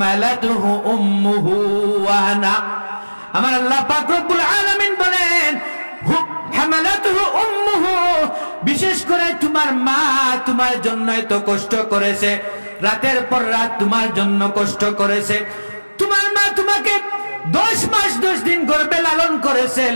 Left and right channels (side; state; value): both; inverted; correlation -1.00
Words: উম্মুহু ওয়ানা। আমার আল্লাহ পাক রব্বুল আলামিন বলেন, হামালাতুহু উম্মুহু, বিশেষ করে তোমার মা তোমার জন্য এত কষ্ট করেছে, রাতের পর রাত তোমার জন্য কষ্ট করেছে। তোমার মা তোমাকে 10 মাস 10 দিন গর্ভে লালন করেছে,